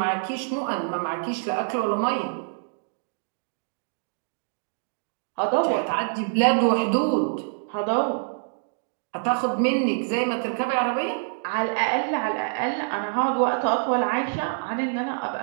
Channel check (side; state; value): left; silent; digital silence